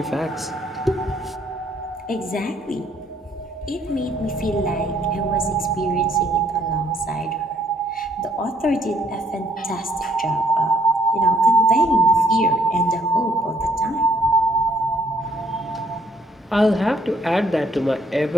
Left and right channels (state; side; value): normal; both; correlation 0.67